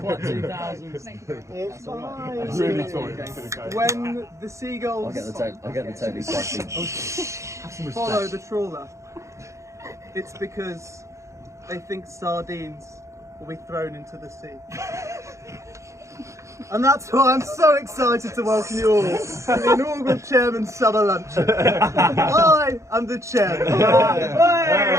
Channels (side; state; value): left; late; 0.14 ms